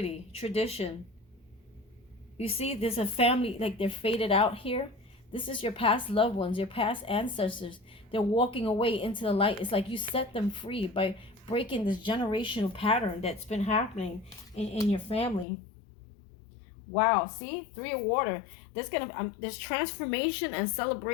tradition. You see, there's a family, like they're faded out here. This is your past loved ones, your past ancestors. They're walking away into the light. It's like you set them free by breaking this generational pattern that's been happening in your family. Wow, see? 3 of water. There's transformation and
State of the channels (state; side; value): drops out; right; at 15.5 s